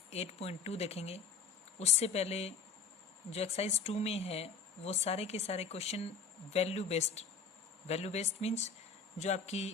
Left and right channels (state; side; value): quieter; right; 5.4 dB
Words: 8.2 देखेंगे। उससे पहले जो एक्सरसाइज 2 में है वो सारे के सारे क्वेश्चन वैल्यू बेस्ड मीन्स जो आपकी